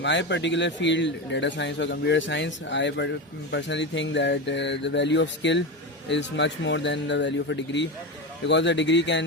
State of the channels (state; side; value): normal; both; correlation 0.19